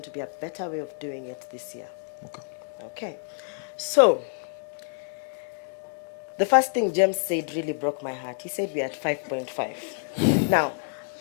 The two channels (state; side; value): silent; right; 60 dB below the other